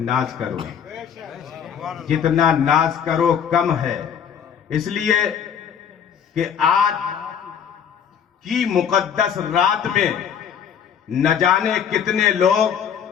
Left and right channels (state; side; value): quieter; right; 8.0 dB